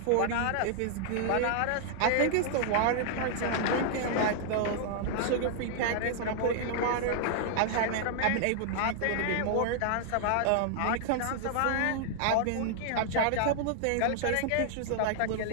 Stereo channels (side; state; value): both; different; correlation -0.01